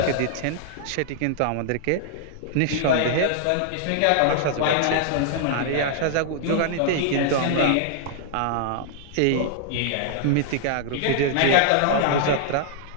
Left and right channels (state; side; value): different; both; correlation -0.01